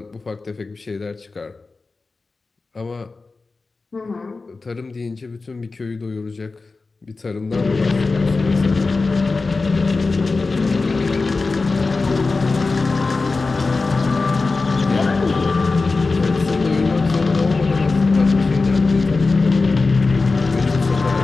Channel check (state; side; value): quieter; right; 3.8 dB